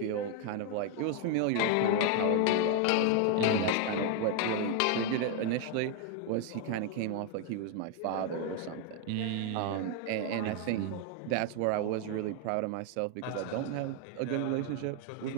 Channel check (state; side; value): different; both; correlation 0.01